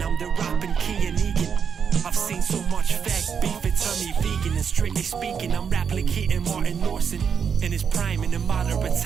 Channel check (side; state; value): left; quieter; 6.8 dB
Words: I'm the rapping Key and Egan. I've seen so much fake beef, it turned me vegan. And strictly speaking, I'm replicating Martin Lawson in his prime. In a moderate